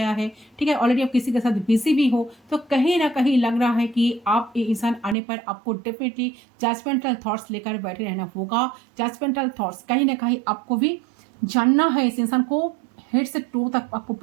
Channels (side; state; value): left; drops out; at 5.2 s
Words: है, ठीक है, ऑलरेडी आप किसी के साथ बिजी भी हो, तो कहीं ना कहीं लग रहा है कि आप ये इंसान आने पर आपको डेफिनेटली जजमेंटल थॉट्स लेकर बैठे रहना होगा। जजमेंटल थॉट्स कहीं ना कहीं आपको भी जानना है, इस इंसान को हेड से टो तक आपको